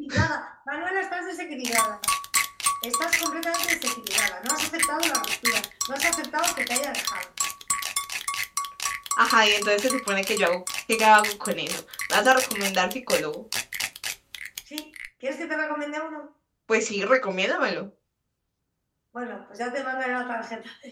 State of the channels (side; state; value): both; identical; correlation 1.00